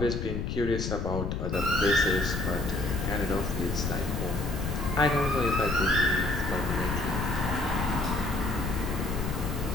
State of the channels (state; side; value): noise; left; rumble, 2 dB below the sound